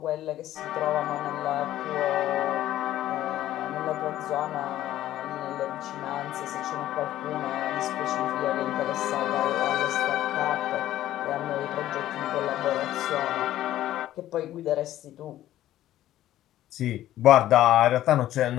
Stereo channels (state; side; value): quieter; right; 13.5 dB